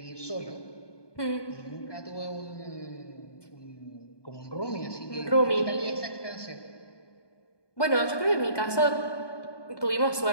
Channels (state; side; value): late; right; 1.2 ms